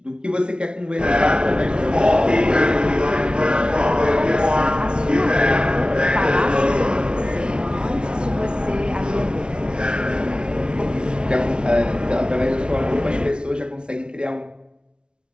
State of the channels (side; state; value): left; late; 0.056 ms